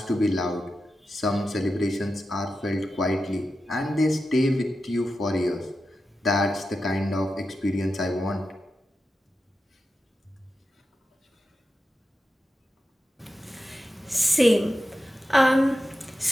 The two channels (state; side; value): normal; both; correlation 0.90